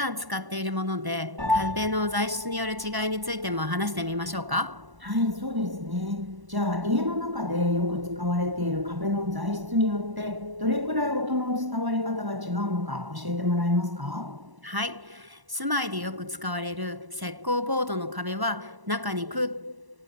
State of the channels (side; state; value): left; late; 1.0 ms